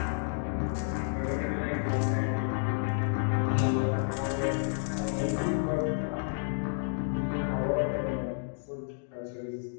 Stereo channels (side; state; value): right; silent; digital silence